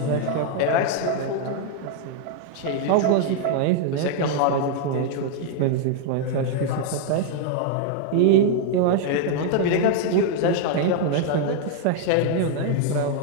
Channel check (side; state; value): both; different; correlation 0.00